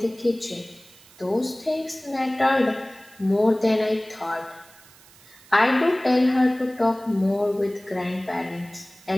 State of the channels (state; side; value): noise; right; hiss, 25 dB below the sound